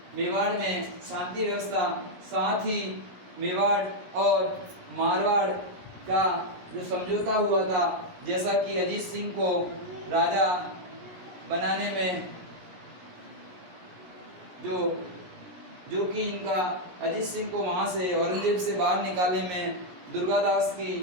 में शांति व्यवस्था, साथ ही मेवाड़ और मारवाड़ का जो समझौता हुआ था, जैसा कि अजीत सिंह को राजा बनाने में जो कि इनका अजीत सिंह को वहाँ से औरंगजेब से बाहर निकालने में दुर्गादास की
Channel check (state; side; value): late; left; 17 ms